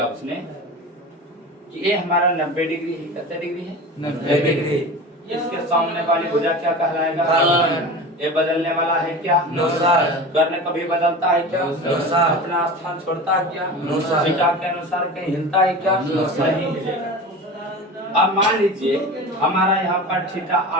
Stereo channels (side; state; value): both; normal; correlation 0.32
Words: उसने कि ये हमारा 90 डिग्री है। कितने डिग्री है? 90 डिग्री। इसके सामने वाली भुजा क्या कहलाएगा? ये बदलने वाला है क्या? No, sir. कर्ण कभी बदलता है क्या? No, sir. अपना स्थान छोड़ता है क्या? No, sir. थीटा के अनुसार कहीं हिलता है क्या? No, sir. नहीं हिलेगा। अब मान लीजिए हमारा यहाँ पर थीटा